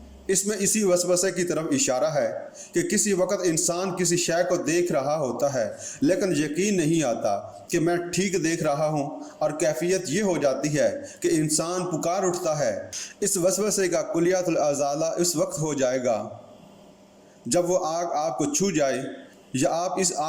اس میں اسی وسوسے کی طرف اشارہ ہے کہ کسی وقت انسان کسی شے کو دیکھ رہا ہوتا ہے لیکن یقین نہیں آتا کہ میں ٹھیک دیکھ رہا ہوں، اور کیفیت یہ ہو جاتی ہے کہ انسان پکار اٹھتا ہے۔ اس وسوسے کا کلیات الازالہ اس وقت ہو جائے گا جب وہ آگ آپ کو چھو جائے یا آپ اس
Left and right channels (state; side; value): identical; both; correlation 1.00